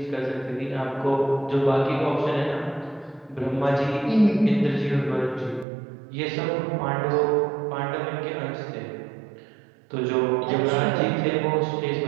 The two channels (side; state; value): left; drops out; at 5.7 s